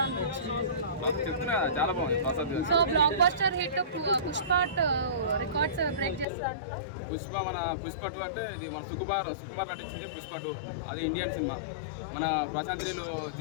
అనిపించింది? చెప్తున్నా కదా, చాలా బాగుంది Prasad. So block buster hit Pushpa records break చేస్తుంది అంటారా? పుష్ప 2 అంటే ఇది మన సుకుమార్ నటించింది. పుష్ప 2 అది ఇండియన్ సినిమా. మన ప్రశాంత్ నీలో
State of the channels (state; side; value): drops out; right; at 6.2 s